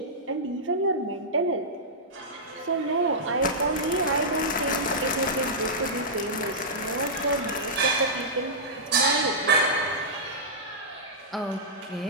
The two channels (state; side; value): normal; both; correlation -0.13